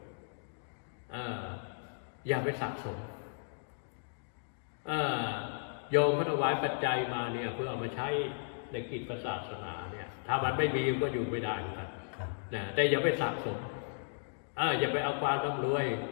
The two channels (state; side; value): silent; right; digital silence